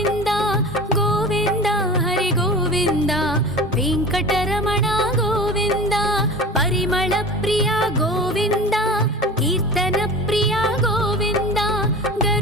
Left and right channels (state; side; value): normal; both; correlation 0.34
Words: गोविन्द हरि गोविन्द वेङ्कटरमण गोविन्द। परिमल प्रिय गोविन्द कीर्तन प्रिय गोविन्द